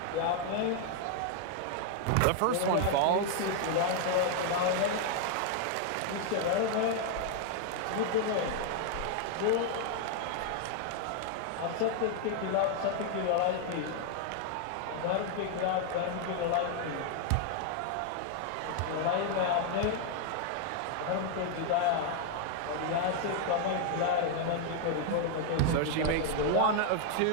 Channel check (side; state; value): both; different; correlation 0.00